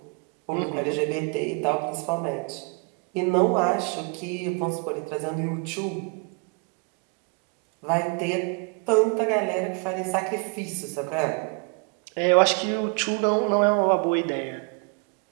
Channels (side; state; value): left; quieter; 36.1 dB